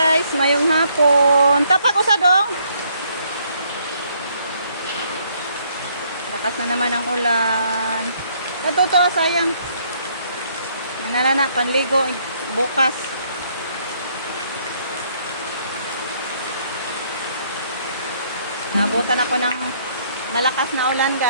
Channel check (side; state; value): both; inverted; correlation -0.67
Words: mayong hapon. Tapak usa dong. Lakas na naman ang ulan. Natuto sayang. Nanalana panligo bukas. Nabutan ako ng malakas na ulan